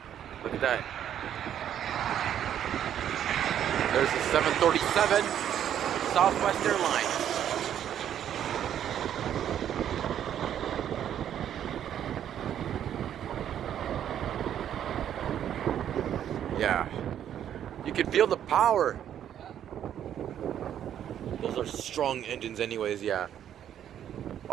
look at that. There's the 737 Southwest Airlines. Yeah, you can feel the power. Those are strong engines anyways, yeah.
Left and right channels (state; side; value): quieter; left; 10.1 dB